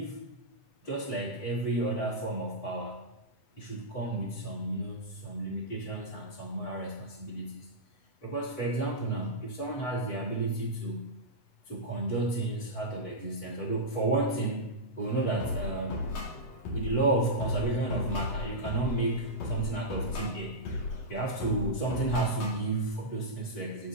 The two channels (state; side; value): late; right; 8.1 ms